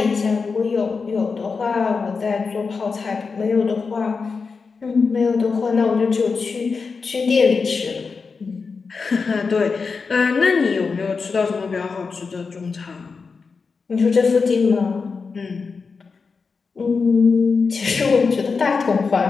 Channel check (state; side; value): quieter; right; 4.9 dB